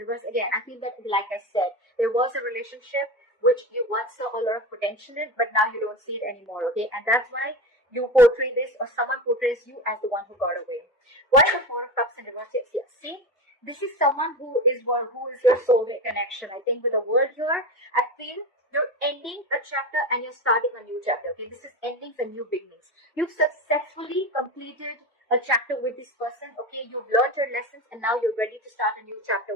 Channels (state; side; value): normal; both; correlation 0.24